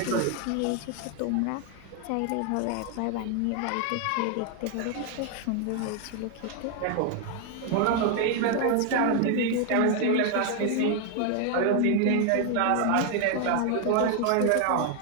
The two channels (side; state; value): both; different; correlation 0.00